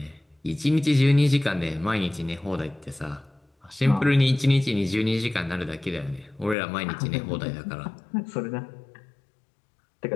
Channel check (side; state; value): right; drops out; at 6.6 s